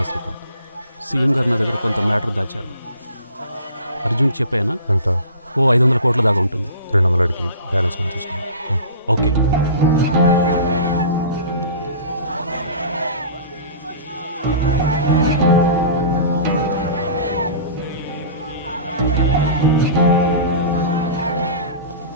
శ్రీకాంత్, సీఎం గారు నా దగ్గర కొంత మ్యాటర్ దాచారు. అర్జున్ చెప్పానా? ఎంత? 500 కోట్ల దాకా ఉంటుంది. 200 అడిగి బ్యాలెన్స్ మనం చూసుకున్నాం. ఓకే.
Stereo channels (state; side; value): inverted; both; correlation -0.40